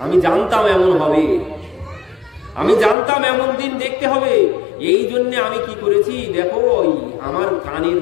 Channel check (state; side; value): drops out; right; at 3.0 s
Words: আমি জানতাম এমন হবে, আমি জানতাম এমন দিন দেখতে হবে, এই জন্য আমি কি করেছি দেখো, ওই আমার কানের